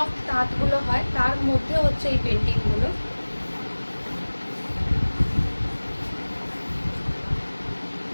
তাঁতগুলো হয় তার মধ্যে হচ্ছে এই পেন্টিংগুলো।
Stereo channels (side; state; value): both; inverted; correlation -1.00